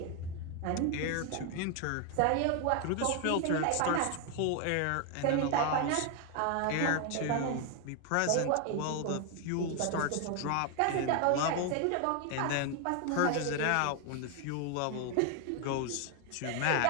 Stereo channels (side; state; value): both; different; correlation 0.01